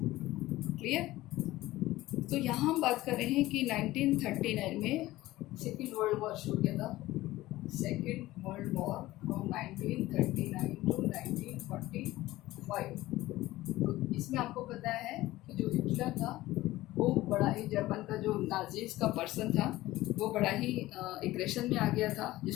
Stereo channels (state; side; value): quieter; right; 17.1 dB